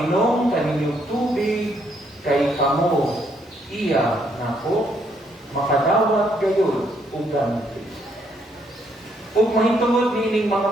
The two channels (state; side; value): normal; both; correlation 0.71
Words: kaninyong tubig, kay kamo iya nako, makadawat gayon ug ganti. Ug mahitungod nining